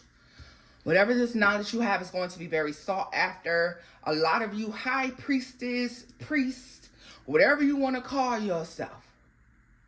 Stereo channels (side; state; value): both; identical; correlation 1.00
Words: Whatever this knowledge you have is going to be very sought after. A lot of you high priestess, priest, whatever you want to call yourself.